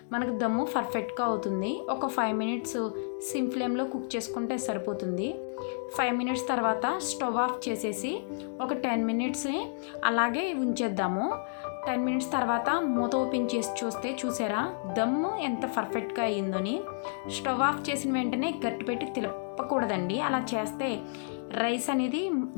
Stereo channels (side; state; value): right; silent; digital silence